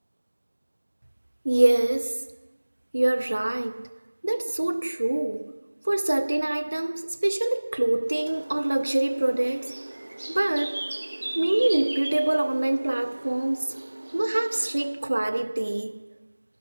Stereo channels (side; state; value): both; inverted; correlation -1.00